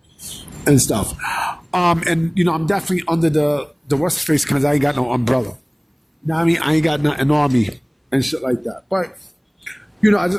and stuff. And I'm definitely under the what's face because I ain't got no umbrella. You know what I mean? I ain't got nothing on me and shit like that. But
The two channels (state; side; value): identical; both; correlation 1.00